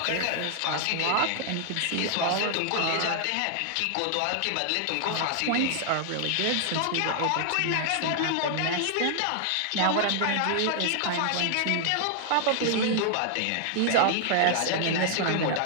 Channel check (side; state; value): both; different; correlation 0.00